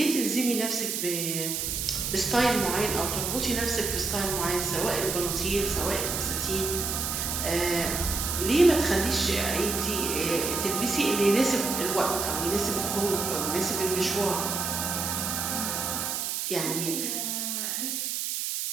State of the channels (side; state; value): right; noise; hiss, 2 dB below the sound